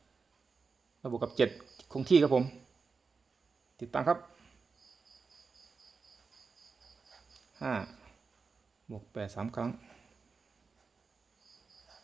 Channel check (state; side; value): quieter; left; 4.8 dB